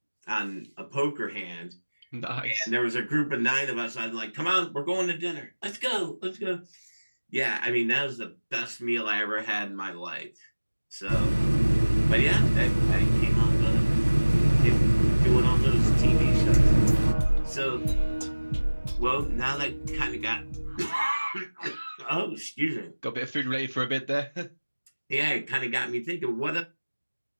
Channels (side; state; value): both; inverted; correlation -1.00